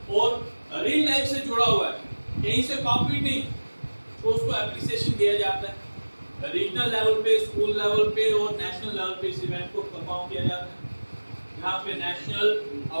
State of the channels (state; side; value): inverted; both; correlation -1.00